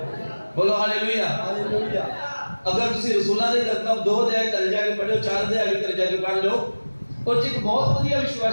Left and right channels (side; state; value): both; inverted; correlation -1.00